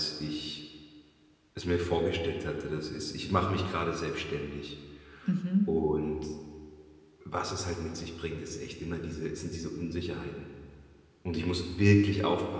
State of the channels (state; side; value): identical; both; correlation 1.00